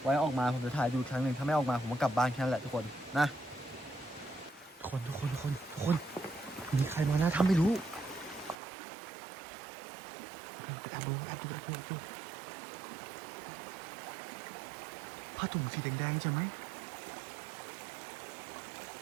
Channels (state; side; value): drops out; left; at 8.6 s